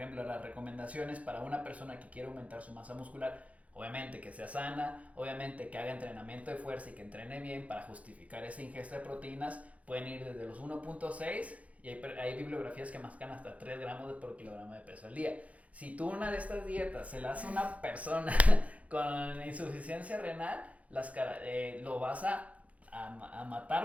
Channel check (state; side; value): late; left; 0.067 ms